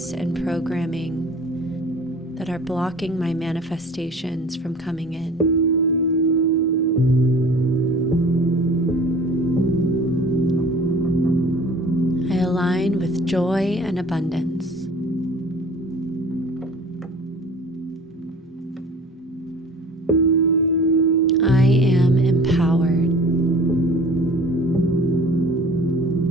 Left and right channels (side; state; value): both; normal; correlation 0.45